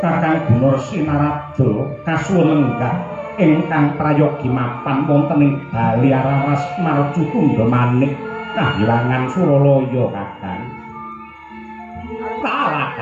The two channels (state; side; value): identical; both; correlation 1.00